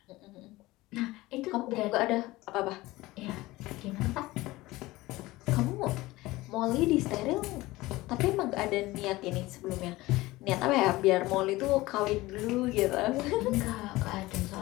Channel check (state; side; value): quieter; right; 19.2 dB